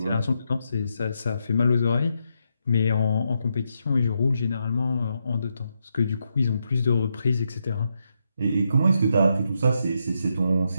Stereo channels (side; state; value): both; inverted; correlation -0.82